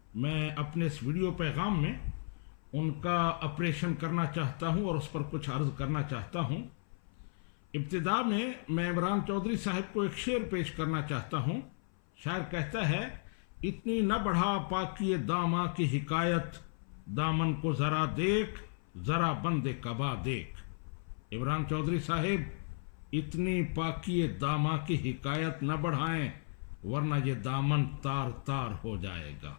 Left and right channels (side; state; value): right; silent; 55 dB below the other